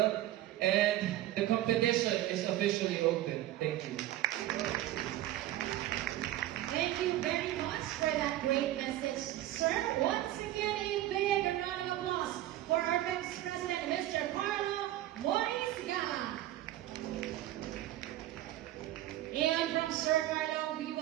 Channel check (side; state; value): left; quieter; 14.3 dB